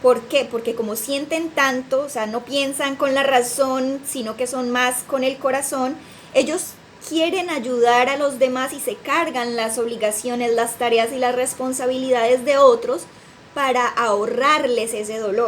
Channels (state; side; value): identical; both; correlation 1.00